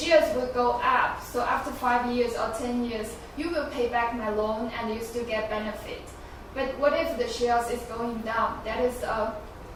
will go up. So after 5 years or 10 years, you will pay back my loan and you still get benefit. But what if the shares is going down? That is a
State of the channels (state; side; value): identical; both; correlation 1.00